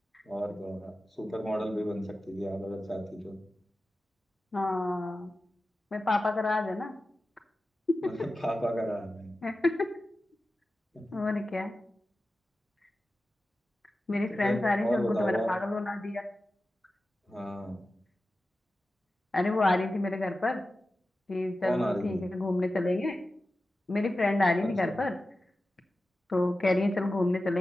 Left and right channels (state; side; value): normal; both; correlation 0.94